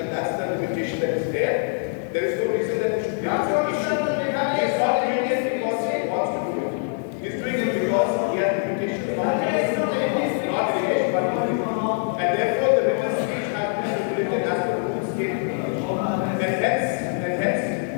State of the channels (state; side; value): silent; right; 58 dB below the other